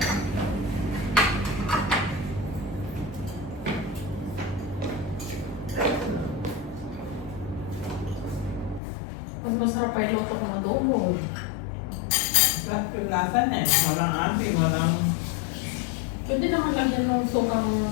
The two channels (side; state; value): right; drops out; at 8.8 s